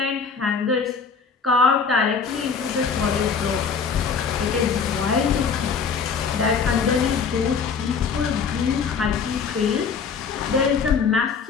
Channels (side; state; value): right; quieter; 5.8 dB